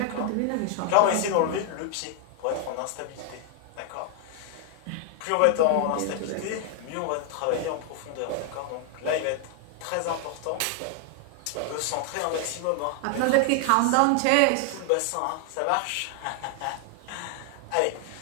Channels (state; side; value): different; both; correlation 0.00